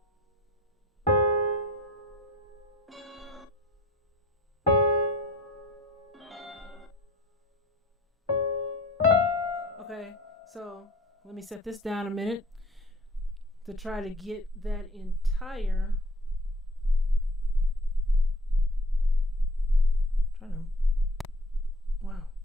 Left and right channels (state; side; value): normal; both; correlation 0.49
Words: Okay. So let me set this down a minute to try to get that entire